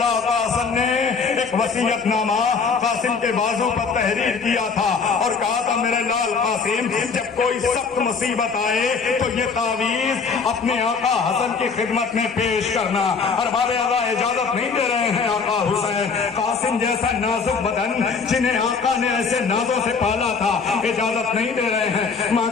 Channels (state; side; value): quieter; right; 5.3 dB